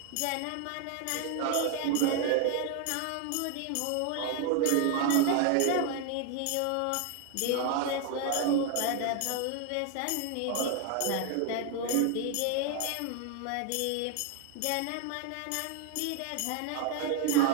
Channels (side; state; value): both; different; correlation 0.00